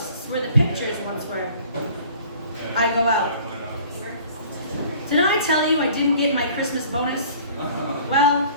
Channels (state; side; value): inverted; both; correlation -0.50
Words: where the pictures once were. I go out. Did I tell you I didn't get my Christmas bonus? Well,